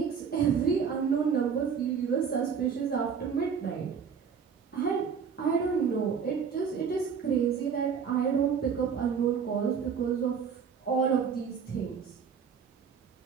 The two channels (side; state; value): left; quieter; 6.6 dB